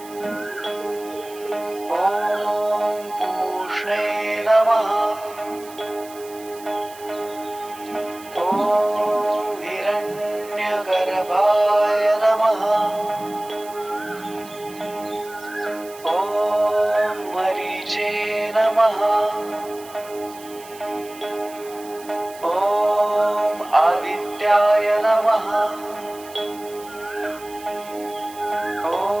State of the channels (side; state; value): right; noise; hiss, 19 dB below the sound